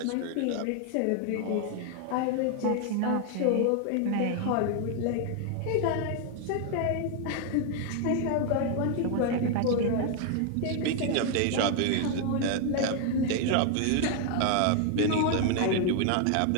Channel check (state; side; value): different; both; correlation 0.00